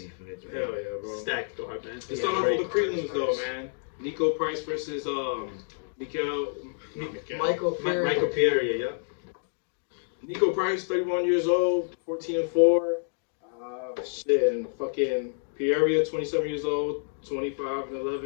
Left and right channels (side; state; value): right; silent; digital silence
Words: fights, man. Hell yeah, bro. Stacked card, man. Let's start off with the prelims though, man. Nico Price versus Michael Pereira, yeah. Nico Price, 31 years old, 14-4. And fucking Pereira, 27 years old,